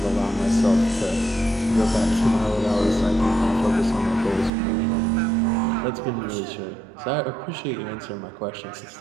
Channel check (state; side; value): drops out; left; at 4.5 s